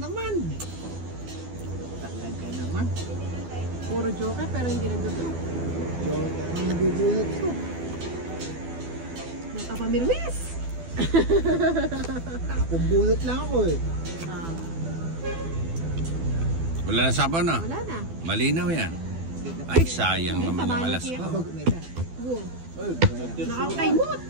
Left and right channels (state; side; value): late; left; 12 ms